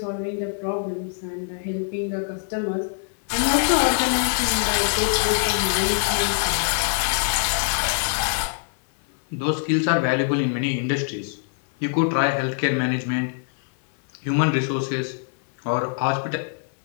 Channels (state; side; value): silent; right; 58 dB below the other